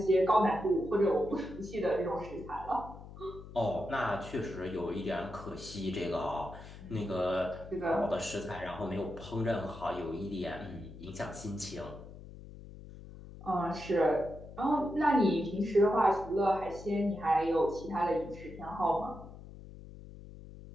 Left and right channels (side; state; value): left; noise; hum, 15 dB below the sound